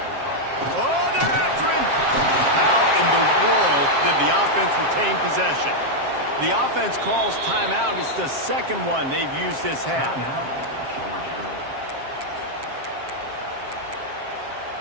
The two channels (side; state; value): left; late; 7.5 ms